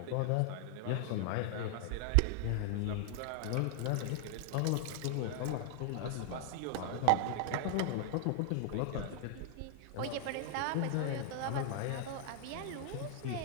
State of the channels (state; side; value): different; both; correlation 0.00